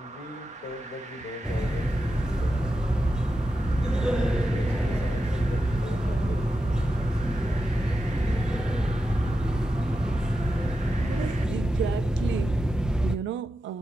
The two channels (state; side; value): normal; both; correlation 0.89